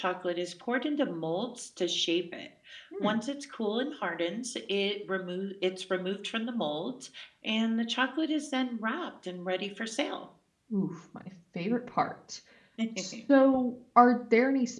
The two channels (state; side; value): identical; both; correlation 1.00